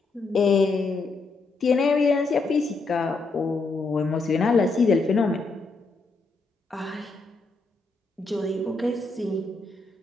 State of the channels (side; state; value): right; quieter; 3.7 dB